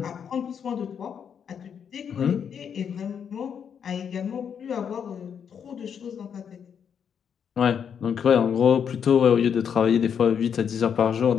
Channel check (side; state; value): right; quieter; 7.6 dB